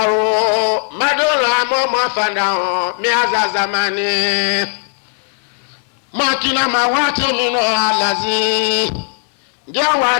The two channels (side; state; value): right; silent; digital silence